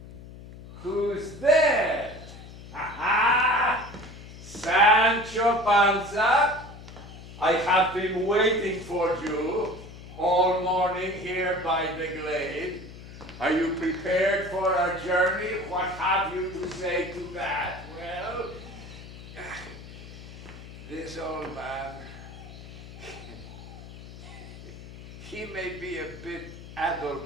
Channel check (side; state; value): left; noise; hum, 15 dB below the sound